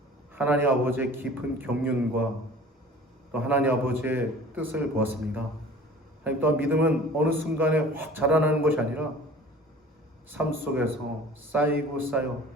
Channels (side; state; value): both; normal; correlation 0.45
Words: 하나님 아버지의 깊은 경륜과 또 하나님 아버지의 뜻을 보았습니다. 하나님 또한 믿음은 어느 순간에 확 자라나는 것이 아니라 삶 속에서 쌓이고 쌓여